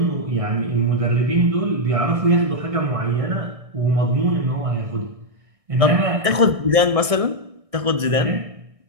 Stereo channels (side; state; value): left; late; 1.6 ms